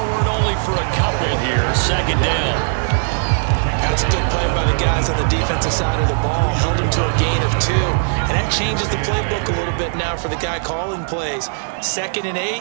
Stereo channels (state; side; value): silent; left; 67 dB below the other